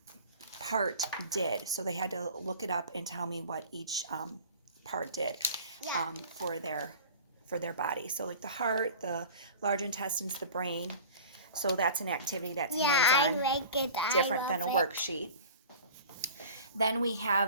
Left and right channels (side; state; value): both; inverted; correlation -0.40